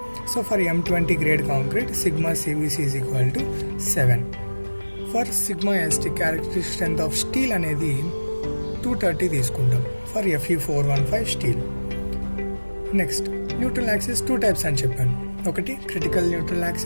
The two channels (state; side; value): inverted; both; correlation -1.00